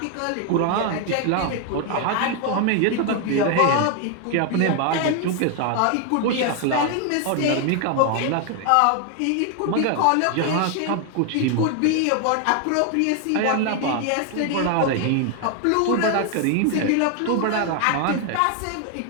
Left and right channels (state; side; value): different; both; correlation 0.00